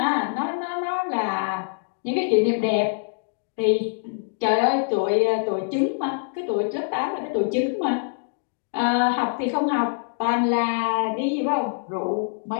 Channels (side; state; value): right; silent; digital silence